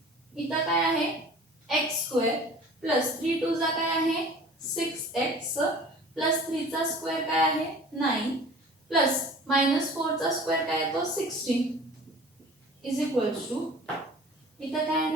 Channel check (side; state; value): both; normal; correlation 0.44